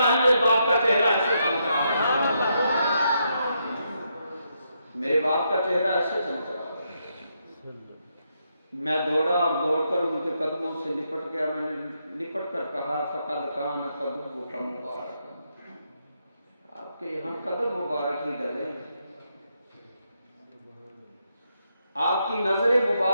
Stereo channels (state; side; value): inverted; both; correlation -0.80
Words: मेरे बाप का चेहरा ऐसे चमक रहा था। मेरे बाप का चेहरा ऐसे चमक रहा। मैं दौड़ा और दौड़कर उनके कदमों से लिपट गया। मैंने लिपट कर कहा फकद खान कदम का मुबारक, आपके यहाँ कदम मुबारक ही डले, आपकी नजरें